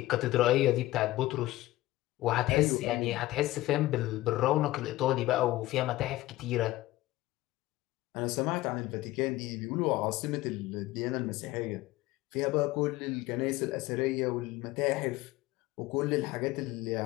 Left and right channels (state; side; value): quieter; right; 17.4 dB